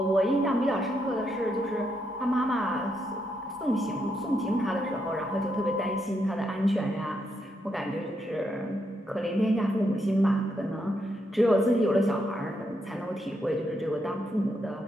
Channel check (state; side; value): normal; both; correlation 0.80